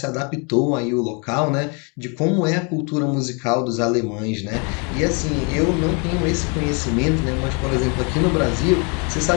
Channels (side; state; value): right; quieter; 34.6 dB